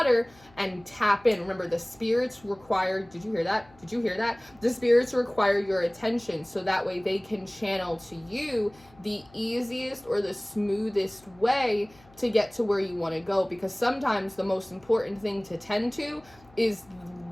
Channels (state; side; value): noise; left; hum, 27 dB below the sound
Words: and tap in. Remember, the spirits require, did you hear that? Did you hear that? The spirits require your attention, so that way they can channel to you the easiest or the smoothest way to get to where you want to go. Because sometimes the most important thing to tend to is